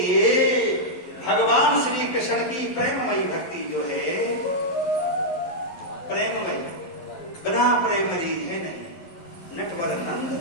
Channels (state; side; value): late; right; 12 ms